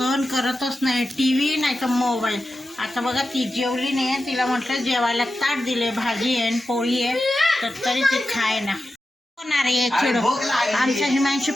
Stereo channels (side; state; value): both; normal; correlation 0.91